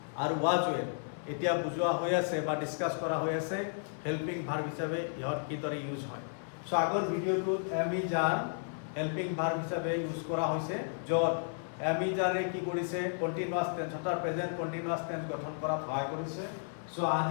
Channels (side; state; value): right; silent; digital silence